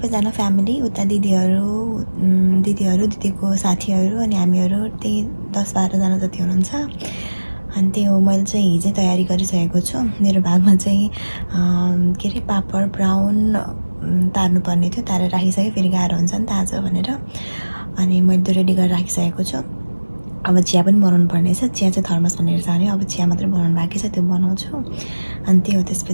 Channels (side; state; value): both; inverted; correlation -1.00